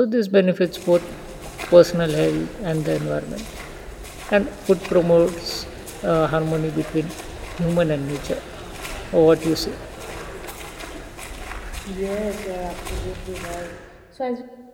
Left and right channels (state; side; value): identical; both; correlation 1.00